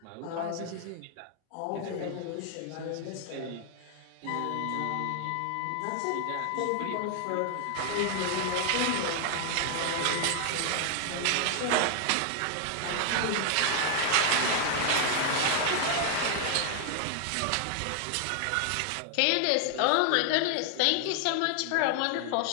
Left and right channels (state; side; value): different; both; correlation 0.00